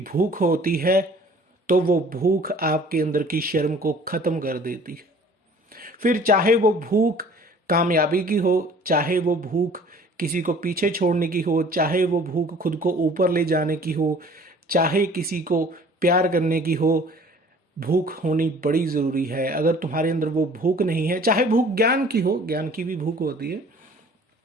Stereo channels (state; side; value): normal; both; correlation 0.50